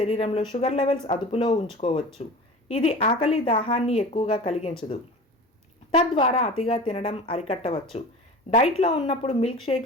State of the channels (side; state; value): both; normal; correlation 0.36